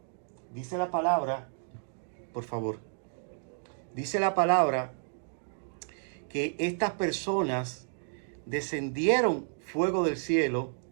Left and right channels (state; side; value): silent; left; digital silence